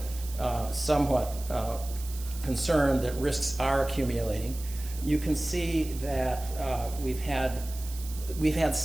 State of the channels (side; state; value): right; noise; hiss, 14 dB below the sound